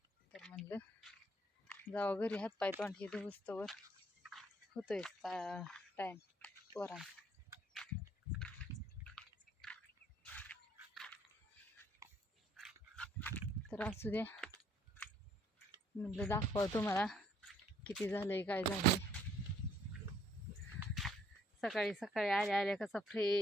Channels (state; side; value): normal; both; correlation 0.65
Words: तर म्हणलं जावं घरी, हातपाय तोंड हे धुस्तवर होतोय टाईम पोरांचा. तर असू द्या म्हटलं दाखवा तुम्हाला किती झालंय काय झालंय. सकाळी सकाळी आल्या आल्या कसा